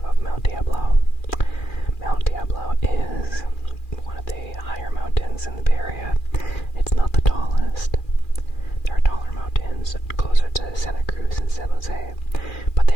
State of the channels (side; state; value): right; late; 2.4 ms